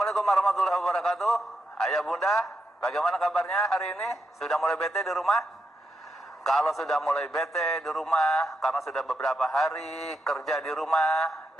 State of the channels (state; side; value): normal; both; correlation 0.83